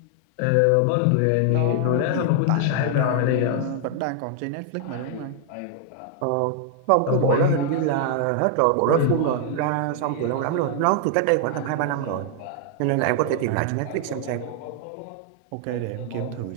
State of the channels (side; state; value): both; different; correlation 0.00